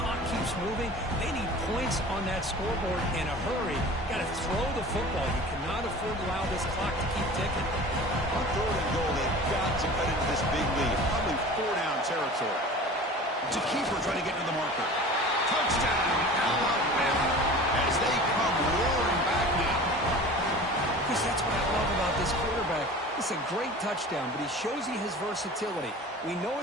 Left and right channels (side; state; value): both; normal; correlation 0.39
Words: keeps moving. They need points on that scoreboard in a hurry. Got to throw the football. You cannot afford to allow this clock to keep ticking. On third and goal, they've got to cut into this big lead. Probably 4-down territory. To keeper trying to get into the marker. Touchdown, Alabama, as they come roaring back now. Chris, that's what I love about this quarterback. It's a great touchdown, but he shows you his versatility. We know